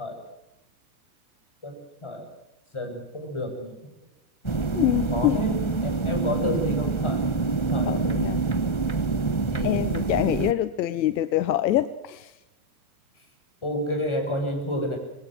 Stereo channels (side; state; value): right; late; 1.3 ms